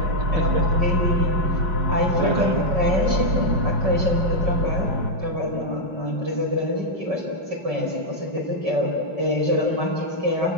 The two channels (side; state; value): left; late; 5.3 ms